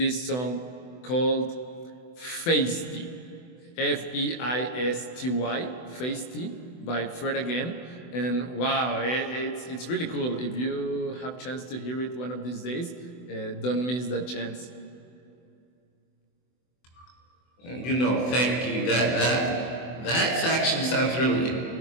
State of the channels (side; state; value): right; late; 24 ms